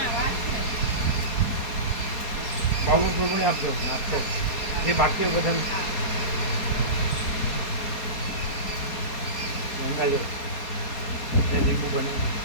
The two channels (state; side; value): late; right; 4.2 ms